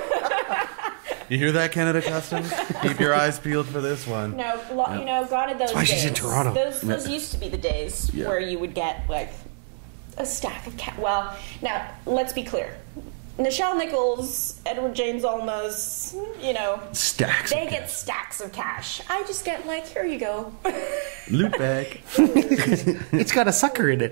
You hear that, Canada Customs? Keep your eyes peeled for this one. No, you know, gone are those That's why days. she's in Toronto. Those used to be the days where you would get like a stack of cash. Well, now let's be clear. Nichelle Nichols, Edward James Olmos, you know, Stacks. they get stacks of cash. I just get like, here you go. Loot bag. It's got a sucker in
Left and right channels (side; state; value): left; silent; 61 dB below the other